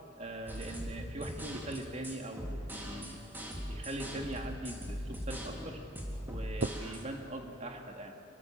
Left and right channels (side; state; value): both; normal; correlation 0.59